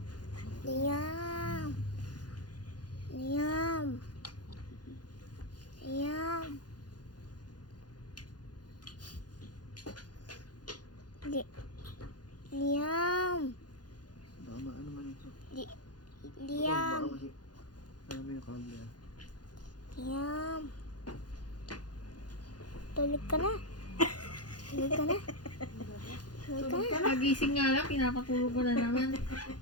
Liam. Liam. Liam. Liam. Tama, ano man ito? Liam. Baka kasi, ano mo yung camera? Liam. Tulog ka na. Tulog ka na. Tulog ka na. Pagising nga lang, pinapatulog ko na naman.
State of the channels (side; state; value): right; late; 0.69 ms